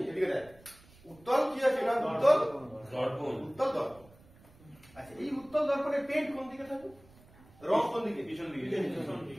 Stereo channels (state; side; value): noise; right; rumble, 26 dB below the sound